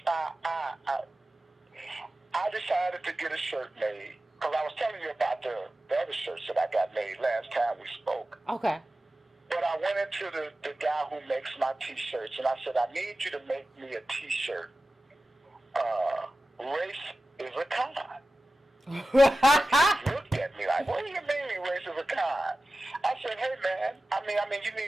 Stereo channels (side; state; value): both; normal; correlation 0.95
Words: I decided to get a shirt made because I was telling you about the other shirts that I got made last time we spoke. Okay. But I went into the guy who makes my T-shirts and I said, I need you to make me a T-shirt. Race is a con. He looked at me like, what do you mean race is a con? I said, hey man, I mean, you